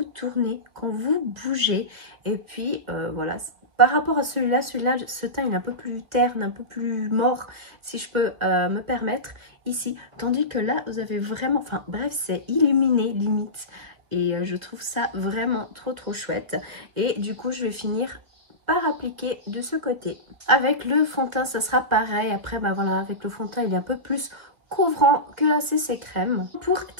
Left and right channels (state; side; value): late; left; 1.9 ms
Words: tournez, quand vous bougez. Et puis voilà, par rapport à celui-là, ce teint il est un peu plus terne, un peu plus mort, si je peux me permettre, ici. Tandis que là, vous avez vraiment, enfin bref, c'est illuminé limite. Et je trouve ça vraiment trop chouette. Et du coup, je vais finir par appliquer de ce côté. Avec le fond de teint, ça sera pareil. Après, bah voilà, avec le fond de teint, il est un peu plus couvrant que la CC crème. Pour